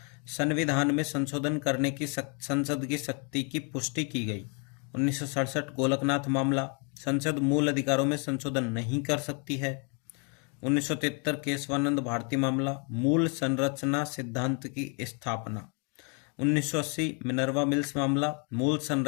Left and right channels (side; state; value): right; quieter; 36.9 dB